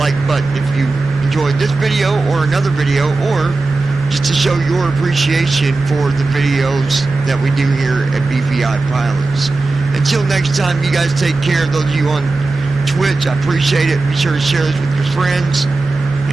button if you enjoyed this video or another video, or just to show your appreciation for the videos that we do here at BVI Pilots. Until next time, you guys take care. Those of you on Twitch, I appreciate it. Be sure to share this with your friends.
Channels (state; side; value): quieter; left; 3.4 dB